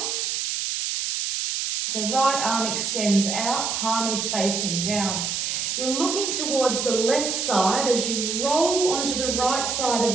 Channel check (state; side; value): noise; right; hiss, 1 dB below the sound